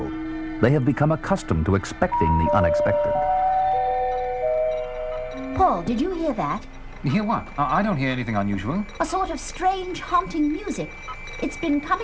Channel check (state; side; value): identical; both; correlation 1.00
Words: They have become accustomed to expecting the unexpected. Paul, did you hear that? You hear what? I don't hear anything unusual. A sort of strange, haunting music. It's been